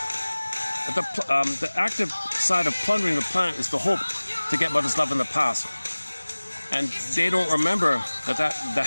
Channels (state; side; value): inverted; both; correlation -1.00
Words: The active side of plundering the planet is the hope to get mother's love in the past. And they don't remember